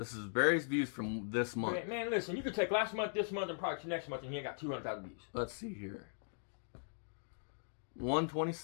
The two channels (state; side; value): silent; right; digital silence